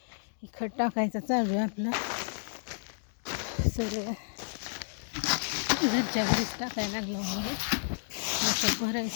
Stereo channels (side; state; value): right; silent; digital silence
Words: खत टाकायचं चालू आहे आपलं. सगळं घरच्या घरीच टाकायला लागलं म्हणून असं